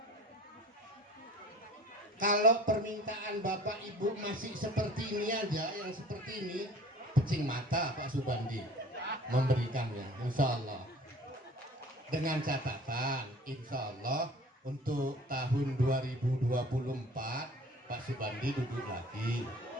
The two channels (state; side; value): normal; both; correlation 0.47